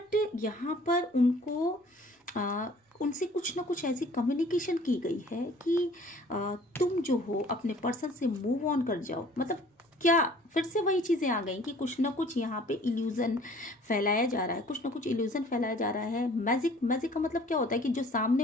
यहाँ पर उनसे कुछ ना कुछ ऐसी कम्युनिकेशन की गई है कि तुम जो हो अपने पर्सन से मूव ऑन कर जाओ। मतलब क्या फिर से वही चीज़ें आ गई कि कुछ ना कुछ यहाँ पे इल्यूज़न फैलाया जा रहा है, कुछ ना कुछ इल्यूज़न फैलाया जा रहा है। मैजिक का मतलब क्या होता है कि जो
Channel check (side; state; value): both; normal; correlation 0.52